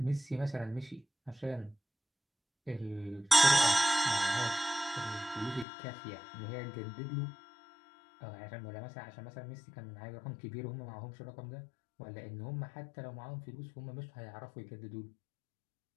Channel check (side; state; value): right; drops out; at 5.7 s